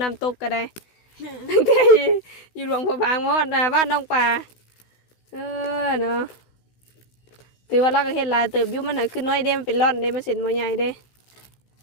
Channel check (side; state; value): right; late; 16 ms